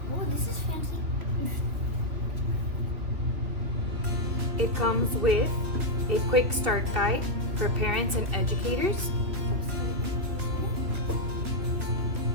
Oh, this is fancy. It comes with a quick start guide for parents and educators.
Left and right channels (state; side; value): late; left; 2.8 ms